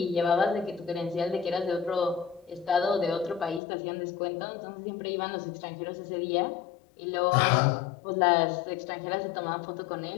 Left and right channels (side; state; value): right; drops out; at 3.6 s